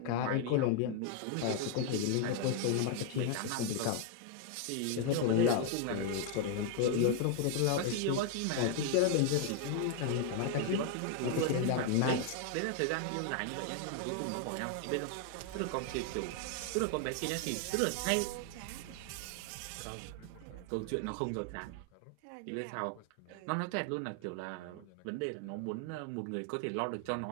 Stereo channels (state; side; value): different; both; correlation 0.00